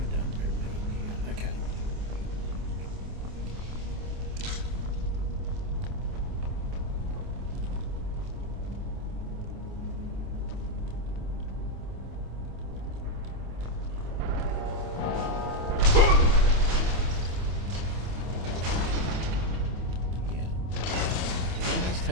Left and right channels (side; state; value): left; late; 27 ms